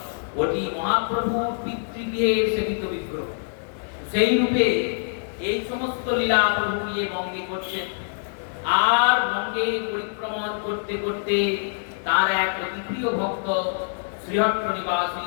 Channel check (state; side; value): silent; right; digital silence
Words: ওটি মহাপ্রভুর পিতৃগৃহের সেবিত বিগ্রহ। সেই রূপে এই সমস্ত লীলা প্রভু নিয়ে বঙ্গে করছেন। আর বঙ্গে পরিক্রমণ করতে করতে তার এক অতি প্রিয় ভক্ত শ্রীহট্ট নিবাসী